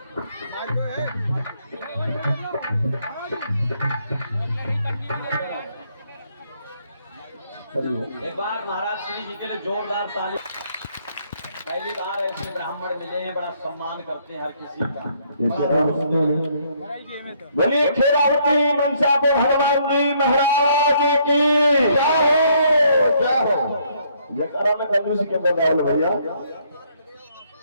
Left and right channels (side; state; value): both; inverted; correlation -0.68